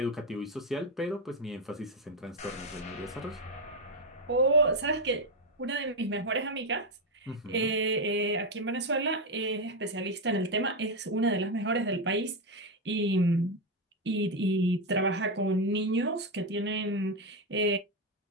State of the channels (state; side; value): normal; both; correlation 0.07